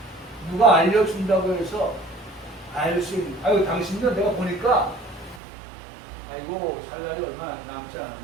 누가 알려준다고 해서 알 수 있는, 아이고 당신도 내가 보니까 아이고 살 날이 얼마 남지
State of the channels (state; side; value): drops out; left; at 5.4 s